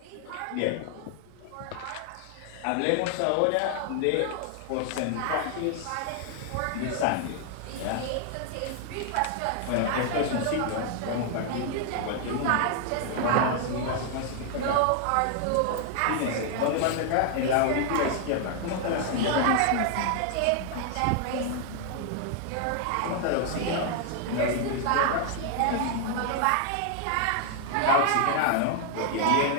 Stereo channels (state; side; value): different; both; correlation 0.00